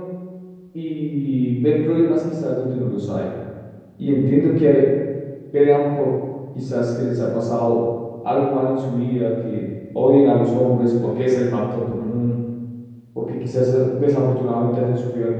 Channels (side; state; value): both; identical; correlation 1.00